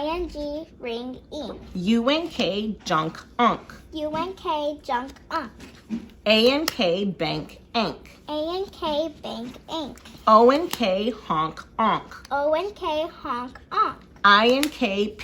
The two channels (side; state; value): both; identical; correlation 1.00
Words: ring, ing. U-N-K, junk, unk. U-N-K, junk, unk. A-N-K, bank, ank. A-N-K, bank, ink. O-N-K, honk, onk. O-N-K, honk, onk. I-N-K,